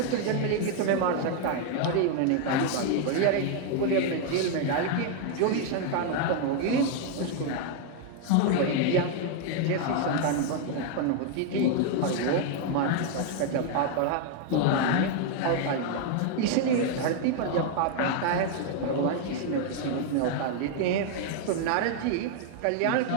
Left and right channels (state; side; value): different; both; correlation 0.00